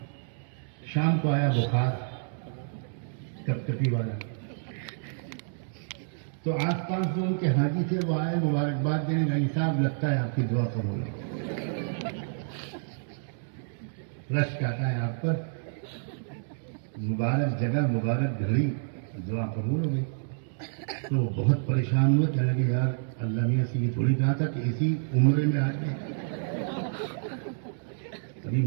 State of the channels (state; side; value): silent; left; digital silence